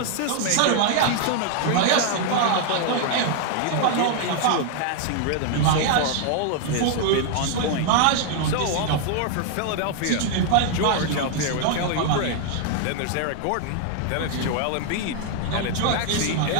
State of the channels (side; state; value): both; different; correlation 0.00